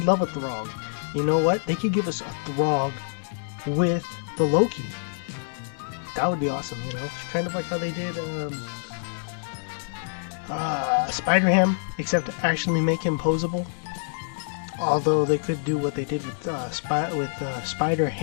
love a Throg. You know what? They could give us a Throg with the Loki. That would be awesome, you know? Kind of like how they did Spider-Ham, except actually make him posable. Although they could do what they did with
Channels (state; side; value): silent; right; digital silence